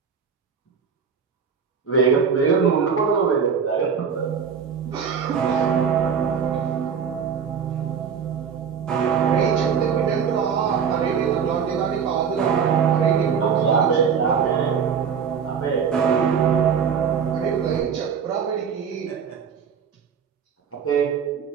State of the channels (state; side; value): quieter; left; 6.8 dB